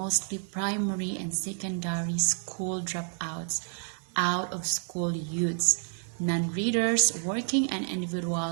primary and secondary school dropouts, out-of-school youths, non-readers, working and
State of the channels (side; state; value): left; silent; 58 dB below the other